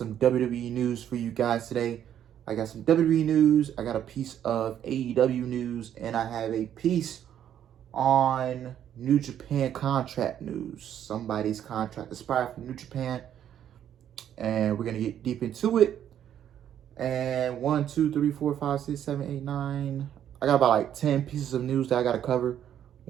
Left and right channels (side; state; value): left; quieter; 10.1 dB